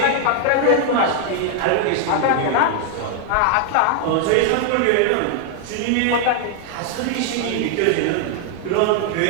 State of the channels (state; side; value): different; both; correlation 0.00